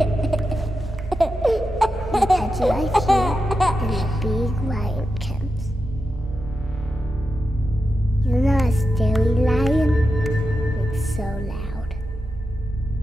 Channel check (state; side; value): normal; both; correlation 0.89